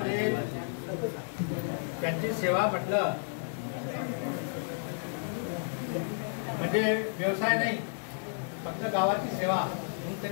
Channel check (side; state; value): right; silent; 57 dB below the other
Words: त्यांची सेवा म्हटलं म्हणजे व्यवसाय नाही, फक्त गावाची सेवा म्हणून